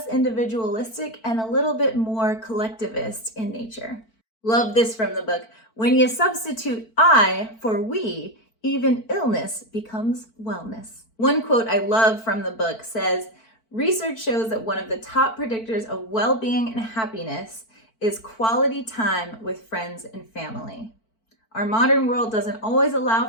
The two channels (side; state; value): right; late; 4.5 ms